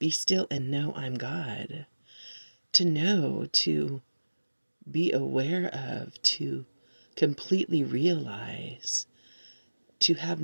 still and know I'm God." To know, to be aware of, to completely realize, to have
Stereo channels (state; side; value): inverted; both; correlation -1.00